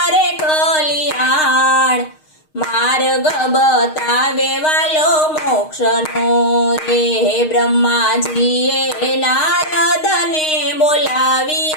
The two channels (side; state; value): right; late; 6.5 ms